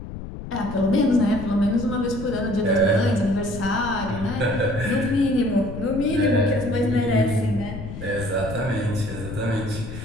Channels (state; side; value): noise; left; rumble, 10 dB below the sound